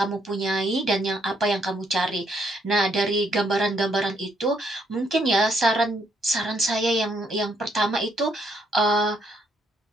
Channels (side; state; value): both; normal; correlation 0.72